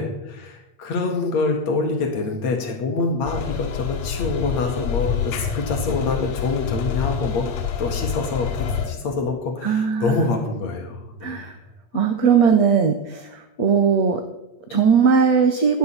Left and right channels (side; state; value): right; late; 8.7 ms